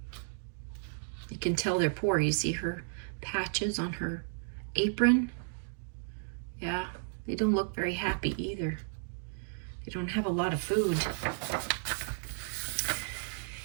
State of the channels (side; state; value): left; silent; digital silence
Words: You can tell they're poor. You see her patches on her apron. Yeah, they don't look very happy either. They don't have a lot of food.